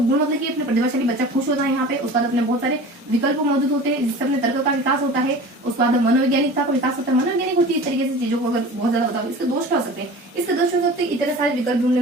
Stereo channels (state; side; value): normal; both; correlation 0.38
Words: मतलब कि अपने प्रतिभाशाली बच्चा खुश होता है यहाँ पे, उसके बाद अपने बहुत सारे विकल्प मौजूद होते हैं जिससे अपने तर्क का विकास होता है, उसके बाद मनोवैज्ञानिकता का विकास होता है, मनोवैज्ञानिक होती है इस तरीके से चीजों को अगर बहुत ज्यादा बताओ। इसके दोष क्या हो सकते हैं, इसके दोष हो सकते हैं इतने सारे विकल्प ढूंढने